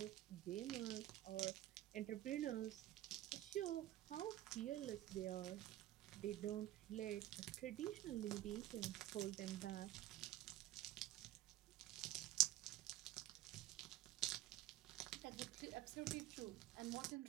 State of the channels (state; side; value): quieter; left; 14.5 dB